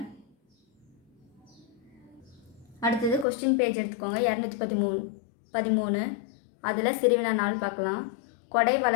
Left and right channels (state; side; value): drops out; right; at 3.2 s